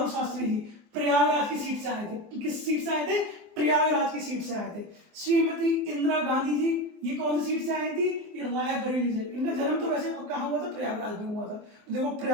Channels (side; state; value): left; late; 24 ms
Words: शास्त्री जी प्रयागराज की सीट से आए थे। किस सीट से आए थे? प्रयागराज की सीट से आए थे। श्रीमती इंदिरा गांधी जी ये कौन सी सीट से आई थी? ये रायबरेली से। इनका जन्म तो वैसे कहाँ हुआ था? प्रयागराज में हुआ था। तो देखो